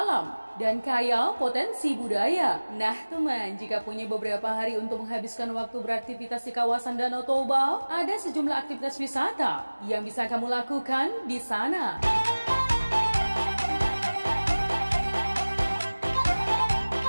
dan kaya potensi budaya. Nah teman, jika punya beberapa hari untuk menghabiskan waktu beraktivitas di kawasan Danau Toba, ada sejumlah aktivitas wisata yang bisa kamu lakukan di sana.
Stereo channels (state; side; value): inverted; both; correlation -1.00